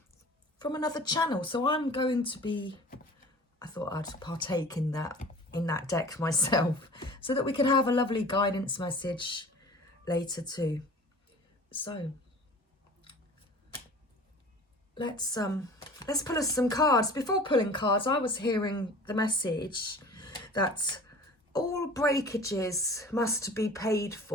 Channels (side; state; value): both; normal; correlation 0.43